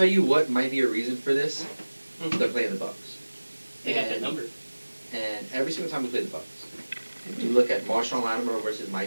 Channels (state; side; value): inverted; both; correlation -1.00